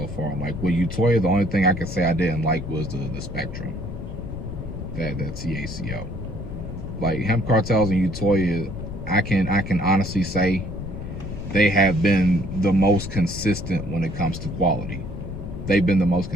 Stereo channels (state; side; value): noise; left; rumble, 8 dB below the sound